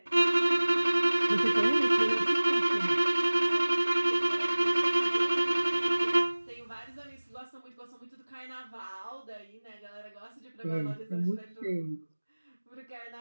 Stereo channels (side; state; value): both; inverted; correlation -1.00